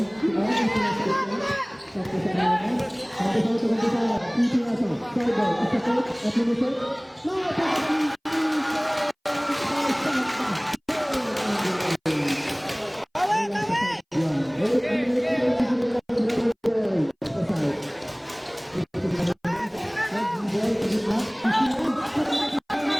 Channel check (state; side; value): identical; both; correlation 1.00